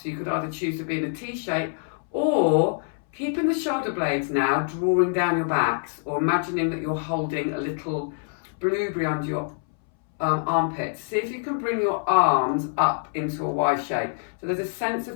So you could either choose to be in a T shape or keeping the shoulder blades now drawing down your backs, or imagining that you're holding a little blueberry under your armpits. See if you can bring your arms up into a Y shape. So there's a sense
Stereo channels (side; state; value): right; silent; 61 dB below the other